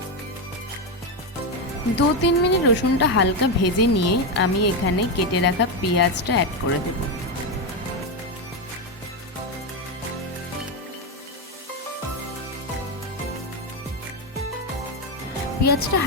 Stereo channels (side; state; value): both; normal; correlation 0.09